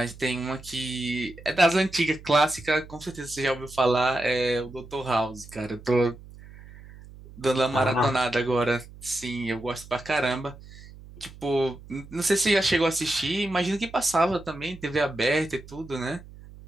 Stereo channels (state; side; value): noise; right; hum, 18 dB below the sound